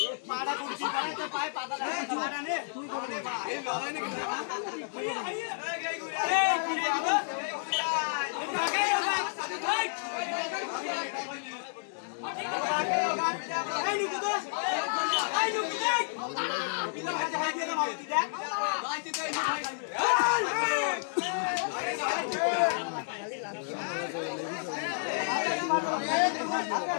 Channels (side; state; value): right; silent; digital silence